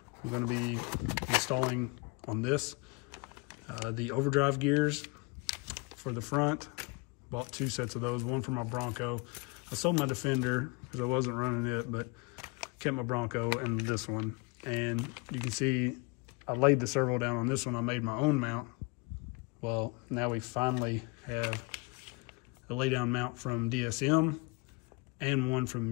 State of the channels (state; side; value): quieter; right; 28.8 dB